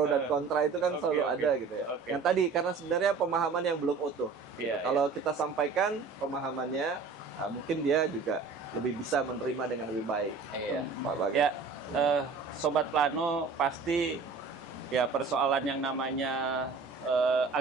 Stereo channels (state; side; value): quieter; left; 4.7 dB